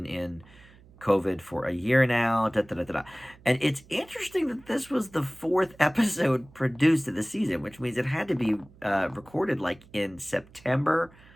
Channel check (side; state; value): right; noise; hum, 25 dB below the sound